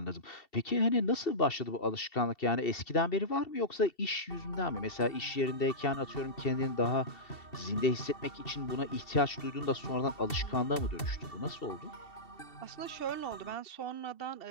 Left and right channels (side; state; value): right; late; 2.7 ms